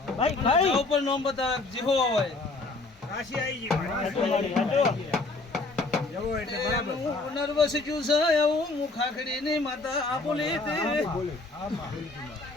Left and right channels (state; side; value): quieter; right; 3.4 dB